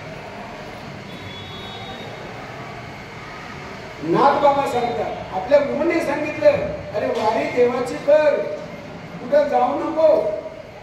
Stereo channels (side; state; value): both; identical; correlation 1.00